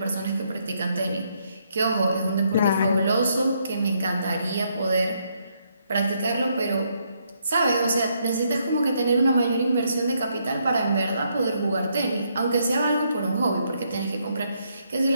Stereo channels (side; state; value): both; inverted; correlation -0.74